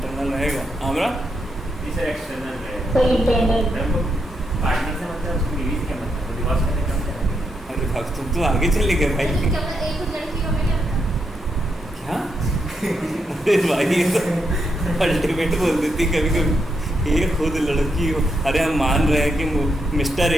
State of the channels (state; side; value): normal; both; correlation 0.81